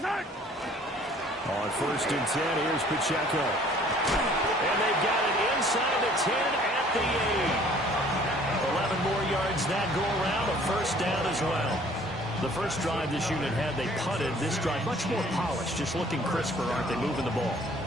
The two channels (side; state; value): both; normal; correlation 0.55